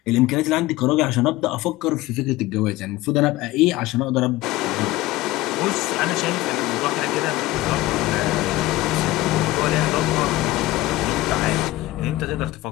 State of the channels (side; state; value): right; quieter; 17.7 dB